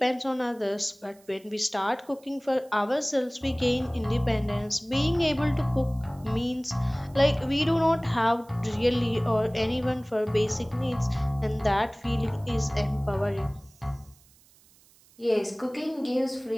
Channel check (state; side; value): noise; right; hiss, 29 dB below the sound